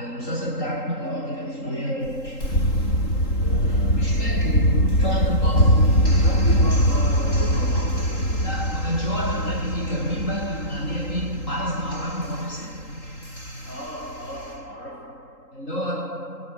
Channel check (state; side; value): late; right; 3.8 ms